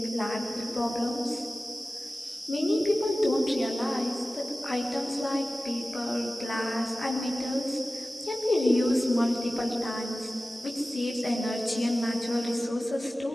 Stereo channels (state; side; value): normal; both; correlation 0.96